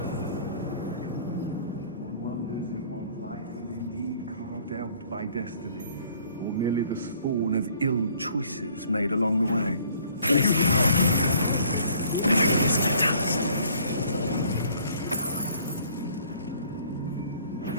One wonders if one's life is indeed carved out by destiny, or merely the spawn of ill choices made along the way.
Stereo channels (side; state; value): both; inverted; correlation -0.58